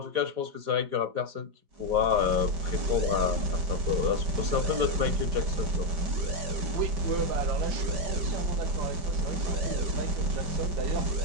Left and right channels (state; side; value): late; left; 4.9 ms